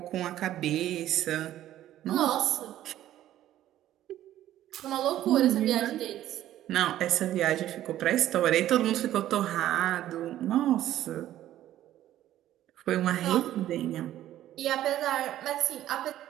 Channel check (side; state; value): left; quieter; 13.0 dB